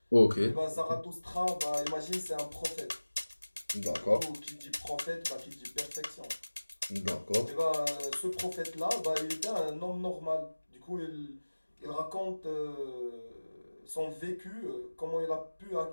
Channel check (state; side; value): inverted; both; correlation -1.00